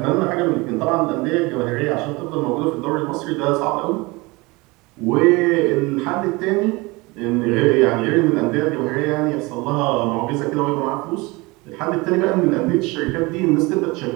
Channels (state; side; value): quieter; left; 24.2 dB